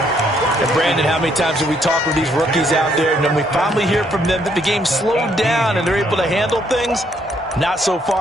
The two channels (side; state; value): both; normal; correlation 0.70